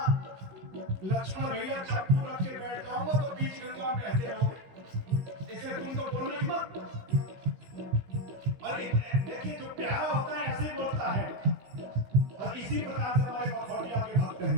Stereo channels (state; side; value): late; left; 16 ms